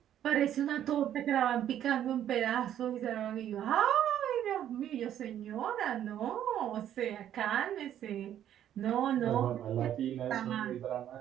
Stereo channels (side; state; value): left; quieter; 10.8 dB